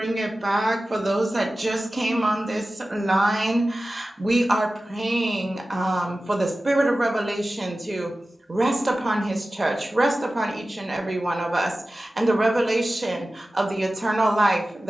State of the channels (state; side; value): normal; both; correlation 0.96